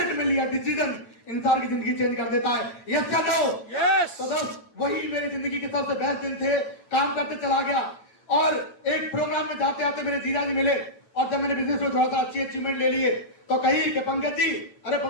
में लिया डिसीजन इंसान की जिंदगी चेंज कर देता है। यस या नो? तो दोस्त वही मेरी जिंदगी के सबसे बेस्ट दिन थे। काम करते चला गया और एक प्रोग्राम में जाते आते मेरे जीजा जी मिले, और जब मैंने बिजनेस में थोड़ा सा अच्छी अचीवमेंट ले लिए तो कही कि पंकज जी, अरे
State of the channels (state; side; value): late; right; 9.0 ms